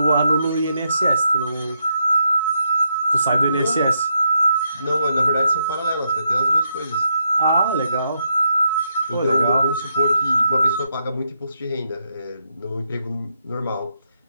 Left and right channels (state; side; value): inverted; both; correlation -0.80